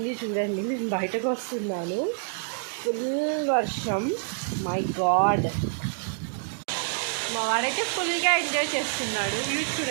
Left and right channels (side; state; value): left; silent; digital silence